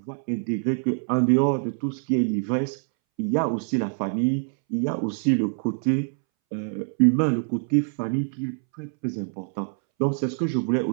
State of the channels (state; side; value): silent; left; 62 dB below the other